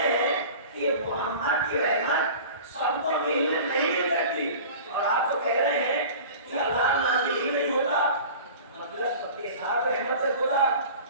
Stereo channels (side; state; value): both; inverted; correlation -0.40